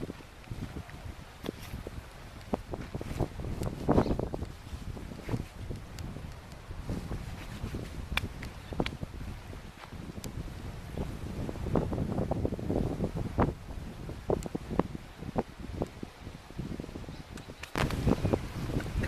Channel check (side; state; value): both; identical; correlation 1.00